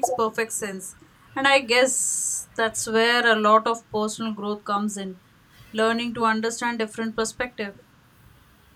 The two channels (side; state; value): both; identical; correlation 1.00